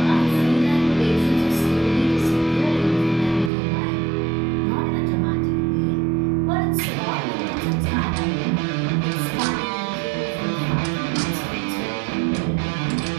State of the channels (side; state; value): left; drops out; at 3.5 s